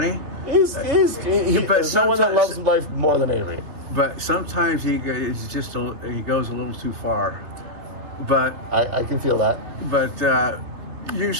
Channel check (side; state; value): left; late; 3.3 ms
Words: There's no one that loves life more than Avery. But sometimes he goes a little too far. But I can feel that. But